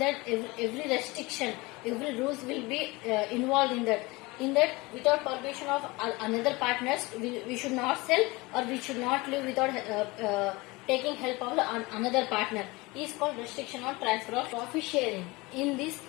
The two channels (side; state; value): right; quieter; 23.2 dB